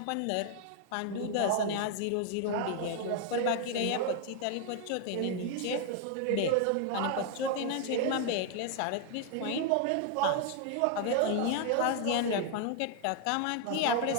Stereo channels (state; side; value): different; both; correlation 0.00